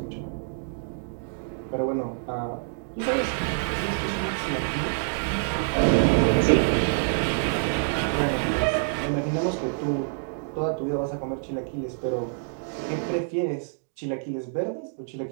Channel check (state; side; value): silent; left; digital silence